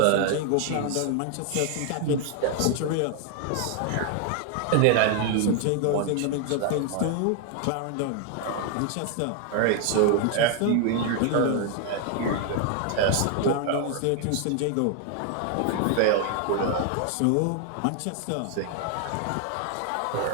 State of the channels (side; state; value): both; different; correlation 0.00